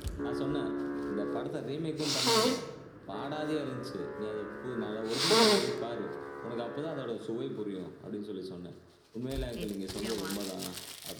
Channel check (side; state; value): both; identical; correlation 1.00